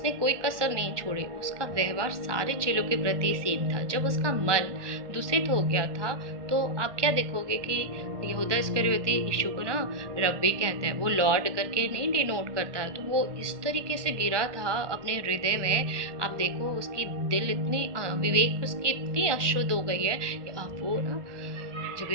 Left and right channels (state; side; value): late; left; 1.1 ms